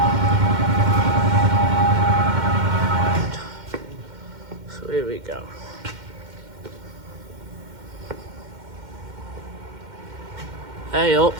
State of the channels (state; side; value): late; left; 2.1 ms